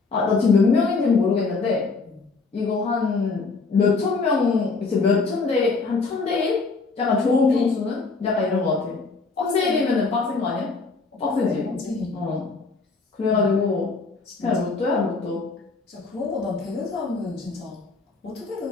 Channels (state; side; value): quieter; right; 4.1 dB